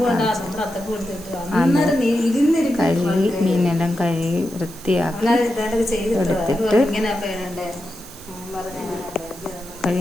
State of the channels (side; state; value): right; noise; hiss, 18 dB below the sound